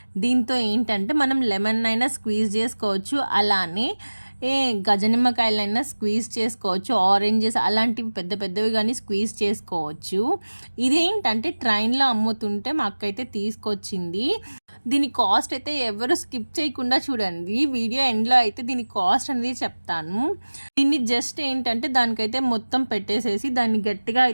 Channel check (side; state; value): both; inverted; correlation -1.00